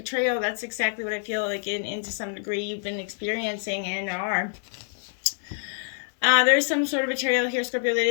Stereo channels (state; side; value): silent; right; 61 dB below the other